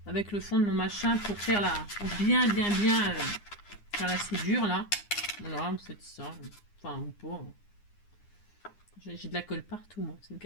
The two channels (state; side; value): late; right; 9.8 ms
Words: avec le fond de mon machin pour faire pour bien faire la soudure là. Voilà, c'est ça. Enfin, ou pas. J'ai de la colle partout, moi. C'est une